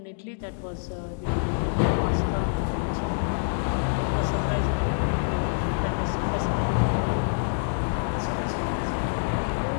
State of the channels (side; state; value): right; silent; digital silence